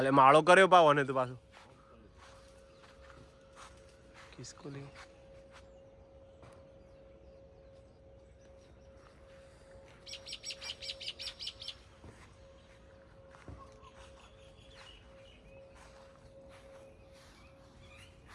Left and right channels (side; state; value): both; identical; correlation 1.00